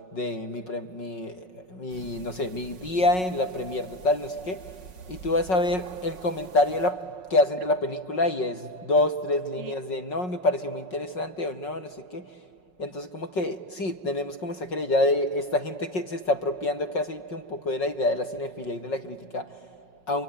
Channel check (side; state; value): right; late; 5.4 ms